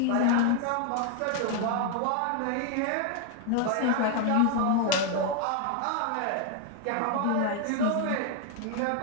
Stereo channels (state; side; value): different; both; correlation 0.00